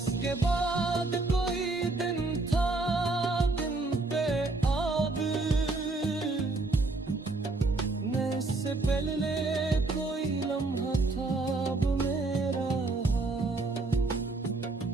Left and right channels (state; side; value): quieter; left; 3.3 dB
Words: बाद कोई दिन था दिन पे आब, न इससे पहले कोई लम्हा था अब मेरा।